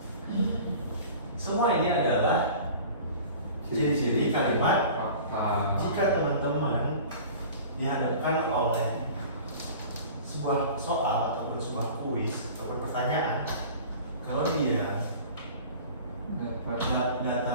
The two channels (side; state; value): both; inverted; correlation -0.41